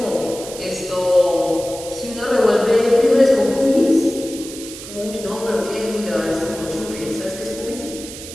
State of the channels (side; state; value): right; noise; hiss, 13 dB below the sound